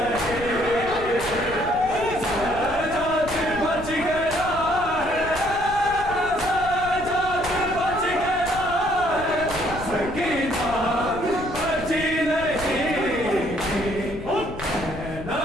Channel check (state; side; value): noise; left; rumble, 12 dB below the sound